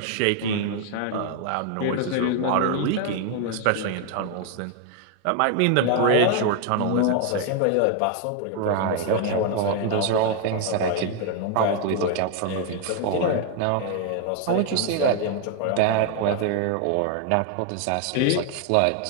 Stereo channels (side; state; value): both; different; correlation 0.00